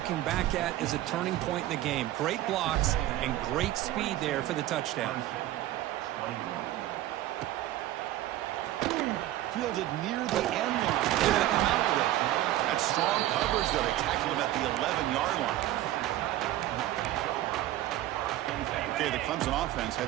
back at as a turning point in the game. Great blocks and great speed there for the touchdown. Fielded near the end line. They're going to come out with it. That's strong coverage there. They tackled him at the 11-yard line. Okay, the Clemson offense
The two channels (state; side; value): quieter; left; 14.4 dB